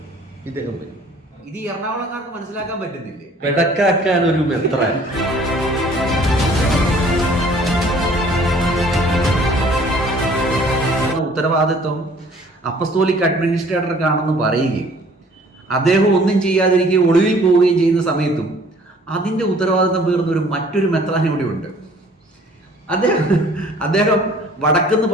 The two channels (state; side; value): normal; both; correlation 0.54